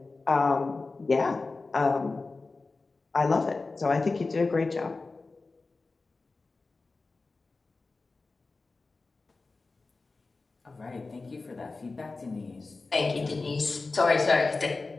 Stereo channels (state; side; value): quieter; right; 3.7 dB